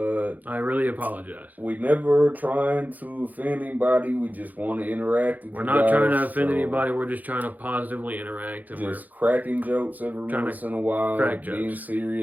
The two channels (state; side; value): late; left; 0.081 ms